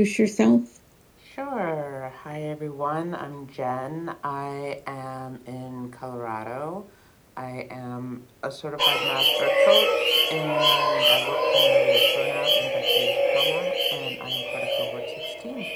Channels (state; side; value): identical; both; correlation 1.00